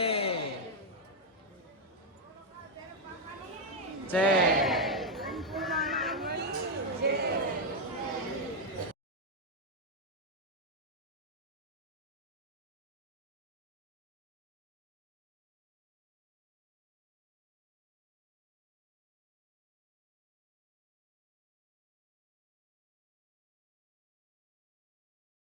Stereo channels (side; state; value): both; normal; correlation 0.01